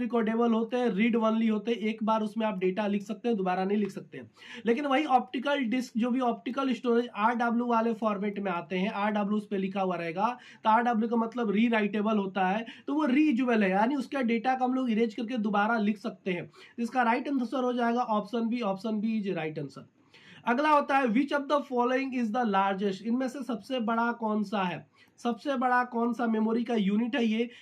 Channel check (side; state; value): both; identical; correlation 1.00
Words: होते हैं, रीड ओनली होते हैं, एक बार उसमें आप डेटा लिख सकते हैं, दोबारा नहीं लिख सकते हैं। लेकिन वही ऑप्टिकल डिस्क जो भी ऑप्टिकल स्टोरेज RW वाले फॉर्मेट में आते हैं, RW उस पे लिखा हुआ रहेगा, तो RW का मतलब री राइटेबल होता है, तो वो रीयूजेबल है, यानी उसका डेटा को हम लोग इरेज करके दोबारा लिख सकते हैं। इसका राइट आंसर हो जाएगा option B. Option B is right answer. अगला होता है which of the following is the largest. इनमें से सबसे बड़ा कौन सा है? सबसे बड़ा कौन सा मेमोरी का यूनिट है ये?